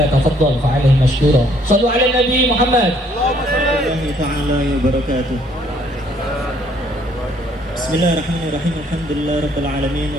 fa'alaihi masykura. Shallu ala Nabi Muhammad. Allahumma ta'ala wa barakatuh. Bismillahirrahmanirrahim. Alhamdulillah rabbil alamin,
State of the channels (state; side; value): normal; both; correlation 0.64